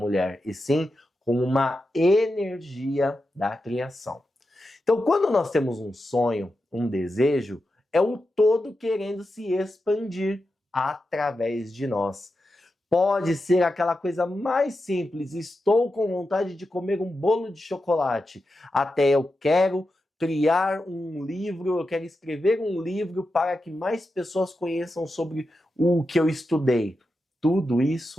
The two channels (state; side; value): normal; both; correlation 0.89